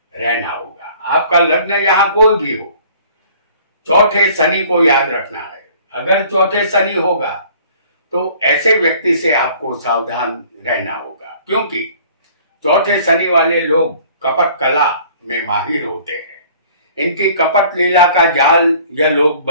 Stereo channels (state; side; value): inverted; both; correlation -0.52